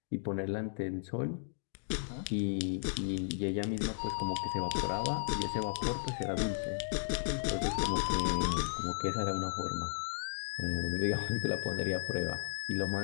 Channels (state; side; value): silent; right; digital silence